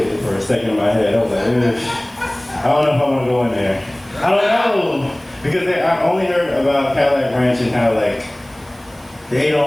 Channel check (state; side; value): noise; right; hiss, 27 dB below the sound